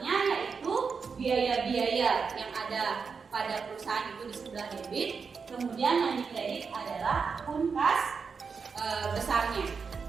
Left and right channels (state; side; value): quieter; left; 5.5 dB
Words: yaitu biaya-biaya yang ada pada perusahaan itu di sebelah debit, kemudian yang dikredit adalah akun kas besarnya.